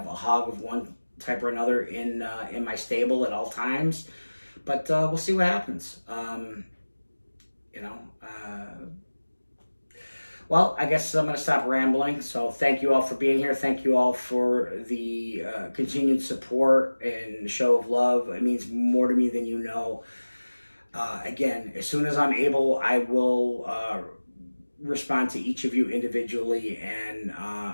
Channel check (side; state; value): both; inverted; correlation -1.00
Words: a hog of one type or another in my stable at all times. But we'll see what happens. Well, I guess I'm going to stop rambling. So thank you all for being here. Thank you all for the continued support and show of love. It means more to me than you know. Again, as soon as I'm able, I will respond to each of you individually. And